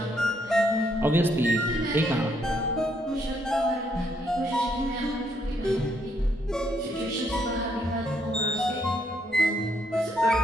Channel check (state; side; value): normal; both; correlation 0.73